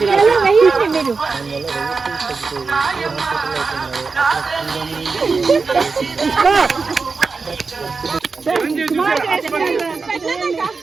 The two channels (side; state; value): left; quieter; 4.5 dB